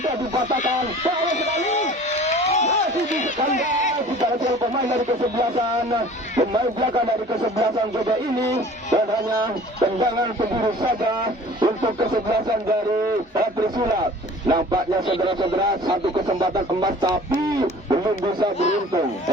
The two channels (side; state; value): both; normal; correlation 0.46